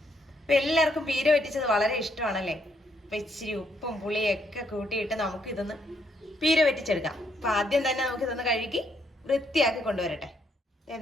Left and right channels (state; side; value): normal; both; correlation 0.73